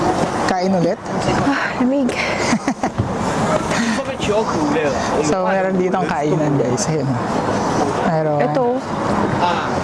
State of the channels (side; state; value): both; identical; correlation 1.00